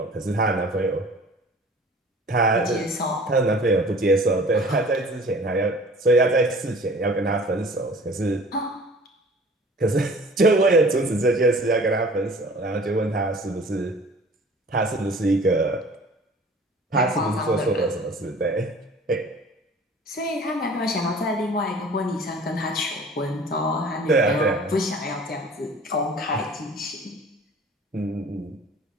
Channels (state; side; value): normal; both; correlation 0.47